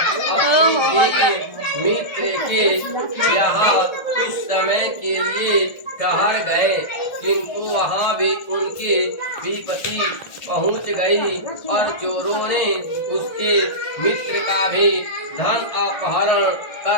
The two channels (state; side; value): late; right; 1.4 ms